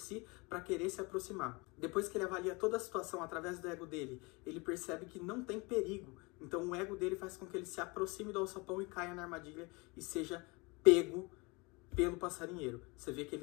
para querer se aproximar. Depois que ele avalia toda a situação através do ego dele, ele percebe que não tem perigo. Então o ego dele faz com que ele se aproxime do alçapão e caia na armadilha e seja pego pelo passarinheiro. Você vê que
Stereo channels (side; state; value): right; quieter; 27.1 dB